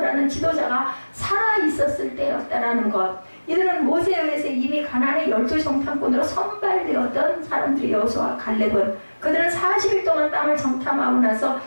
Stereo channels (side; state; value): both; inverted; correlation -1.00